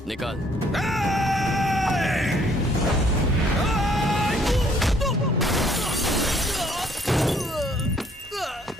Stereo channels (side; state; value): both; normal; correlation 0.64